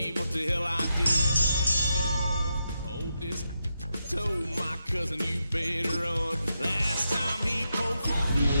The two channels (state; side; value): inverted; both; correlation -0.85